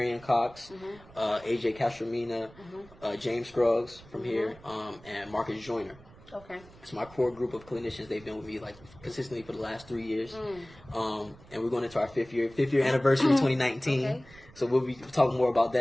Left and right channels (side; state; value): right; noise; rumble, 22 dB below the sound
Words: Ann Cox, AJ Castromina, James Scruggs from here, and Marcus Joyner. Okay. It's my core group of clinicians. They've been with me consistently for the last 3 years. And we're going into our fifth year anniversary 2019. Okay. So we'll be talking more about